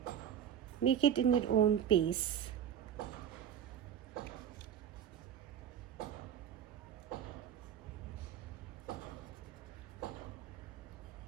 Make it in your own pace.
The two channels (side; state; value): left; quieter; 9.2 dB